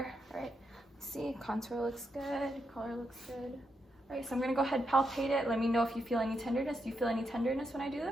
All right, see, contour looks good, color looks good. All right, so I'm gonna go ahead and palpate it. Let me know if you feel any tenderness. Do you feel any tenderness when I do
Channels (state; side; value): normal; both; correlation 0.82